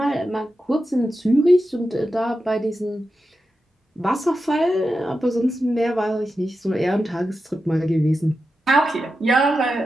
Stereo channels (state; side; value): normal; both; correlation 0.90